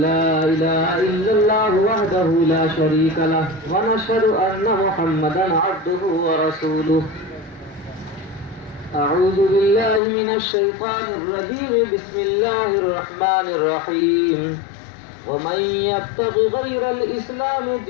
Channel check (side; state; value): right; drops out; at 10.0 s